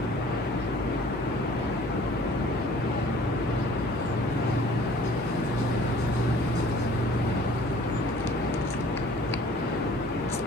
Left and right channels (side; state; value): both; normal; correlation 0.51